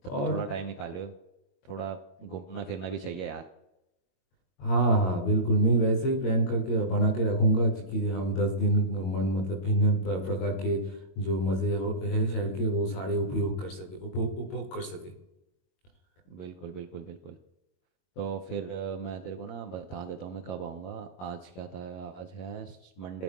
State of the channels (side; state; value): right; late; 22 ms